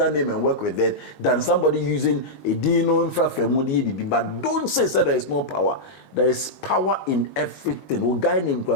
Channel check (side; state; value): right; late; 19 ms